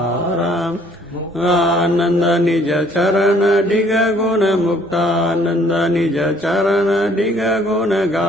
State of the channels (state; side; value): normal; both; correlation 0.60